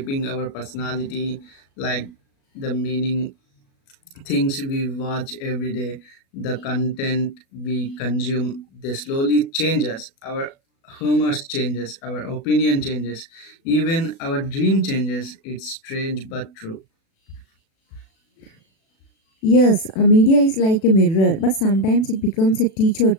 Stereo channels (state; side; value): late; right; 37 ms